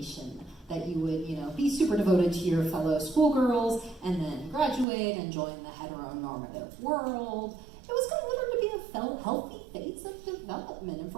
that you would, be super devoted to your fellow schoolgirls and then graduate and join the heteronormative world. It was considered to be a healthy phase of development, and for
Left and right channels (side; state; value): left; drops out; at 4.9 s